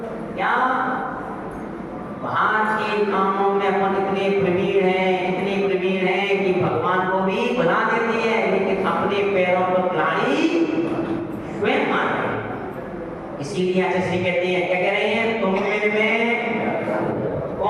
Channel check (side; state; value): both; identical; correlation 1.00